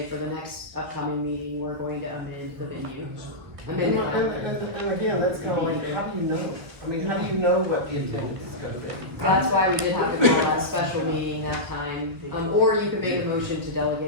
for the next upcoming meeting, we're going to amend the venue. And again, that's kind of like, how do you know? I mean, how do you know what the attendance is gonna be? That's why we did have to call that special meeting that time, or you could make a motion to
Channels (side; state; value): left; late; 1.4 ms